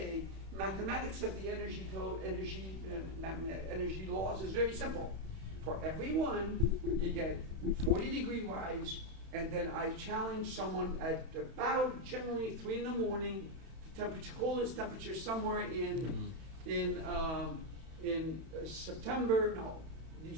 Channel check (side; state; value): left; late; 31 ms